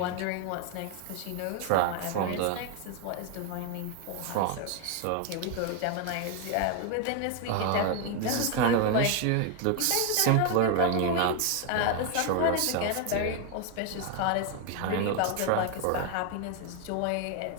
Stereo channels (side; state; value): both; different; correlation 0.01